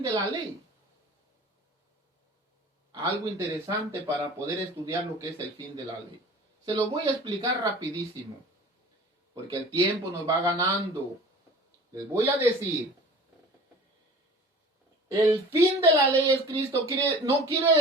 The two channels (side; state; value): both; normal; correlation 0.42